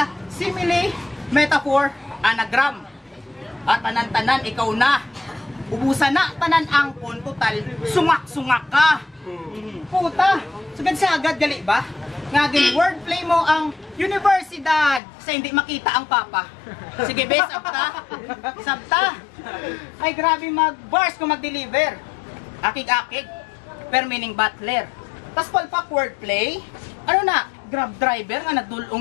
simile, metaphor, anagram. At tanan-tanan ikaw na. Ubusan na tanan angkon total, sungak-sungak ka. Puta, sagad-sagad gali ba? Ngagin wordplay mo ang universidad sa hindi makita ang papa. Sige, bes, sabta. Ay, grabe mag-bars kung mag-deliver. Akig-akig. Per meaning butler. Tas palpak wordplay. Ano na? Grab driver nga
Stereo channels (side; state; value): right; drops out; at 15.0 s